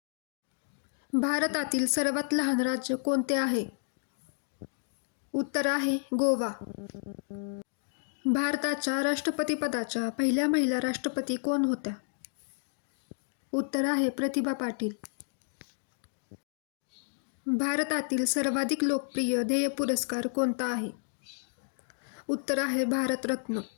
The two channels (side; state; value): right; silent; digital silence